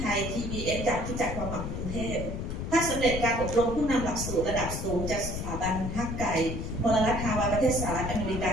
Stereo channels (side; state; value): left; noise; rumble, 4 dB below the sound